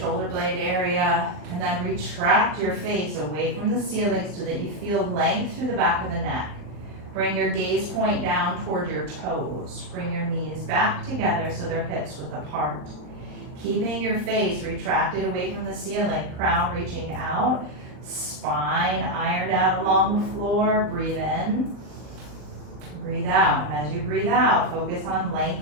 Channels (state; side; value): late; left; 39 ms